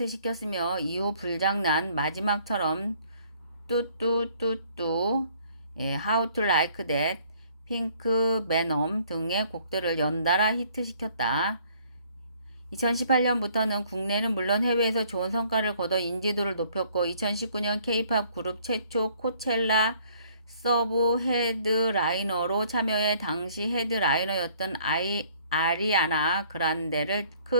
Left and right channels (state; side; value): inverted; both; correlation -0.61